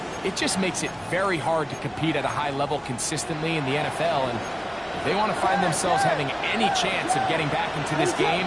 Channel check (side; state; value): both; identical; correlation 1.00